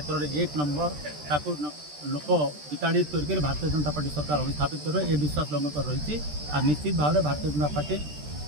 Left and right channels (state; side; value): late; left; 13 ms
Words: में 1 नंबर ताकू लोक विताड़ित करके भारतीय जनता पार्टी सरकार अभिस्थापित कर ए विश्वास लोक रही। और निश्चित भाव में भारतीय जनता पार्टी